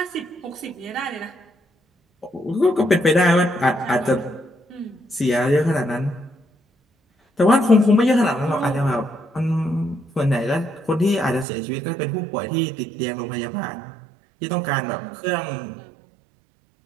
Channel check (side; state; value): left; drops out; at 11.5 s